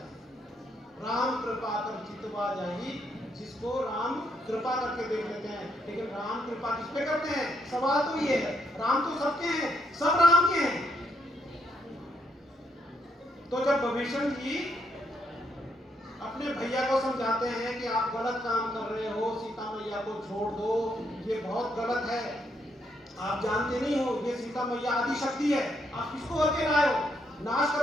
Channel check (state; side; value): normal; both; correlation 0.75